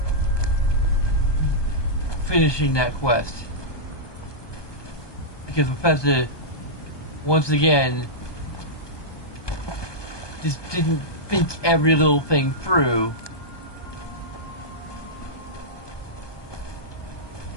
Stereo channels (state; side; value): late; right; 1.2 ms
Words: finishing that quest. Because Bethesda, once again, just didn't think every little thing through.